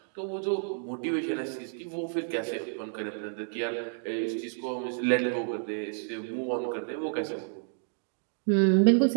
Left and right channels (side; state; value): left; silent; digital silence